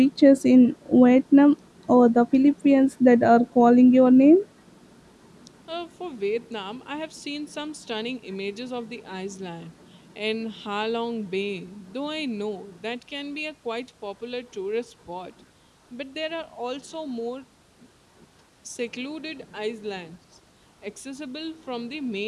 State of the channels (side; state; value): both; identical; correlation 1.00